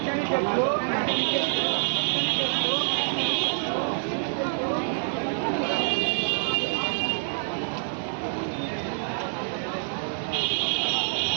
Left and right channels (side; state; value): left; silent; digital silence